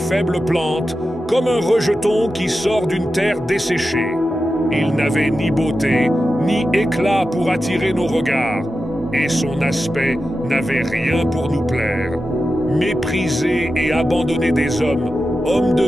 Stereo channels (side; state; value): both; normal; correlation 0.91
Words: plante, comme un rejeton qui sort d'une terre desséchée. Il n'avait ni beauté, ni éclat pour attirer nos regards, et son aspect n'avait rien pour nous plaire. Méprisé et abandonné des hommes, homme